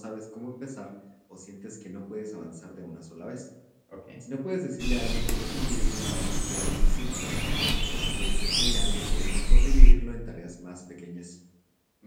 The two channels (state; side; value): identical; both; correlation 1.00